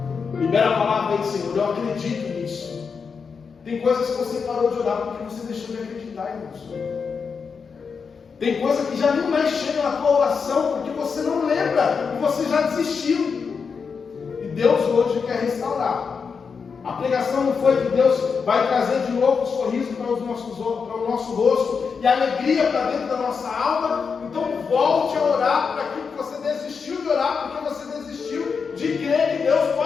Libera a palavra aí, Senhor. Eu acredito nisso. Tem coisas que você parou de orar porque você deixou de acreditar, irmãos. Tem coisa que já nem mais chega na tua oração porque você não lembra e você já desistiu. E Deus hoje quer restaurar. A pregação não foi que Deus vai trazer de novo o sorriso para o nosso rosto e a alegria para dentro da nossa alma. Então volte a orar para aquilo que você desistiu de orar, porque você desistiu de crer que Deus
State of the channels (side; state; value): right; quieter; 5.7 dB